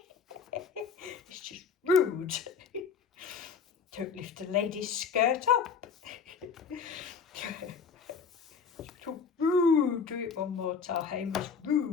It's just rude. Don't lift a lady's skirt up. So rude. Do it one more time. It's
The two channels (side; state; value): right; quieter; 5.9 dB